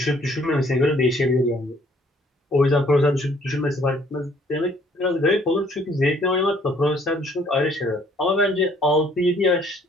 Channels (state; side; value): normal; both; correlation 0.61